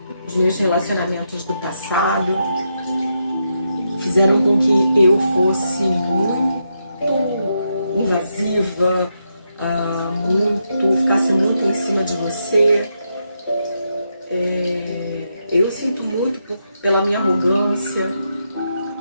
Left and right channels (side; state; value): both; inverted; correlation -0.83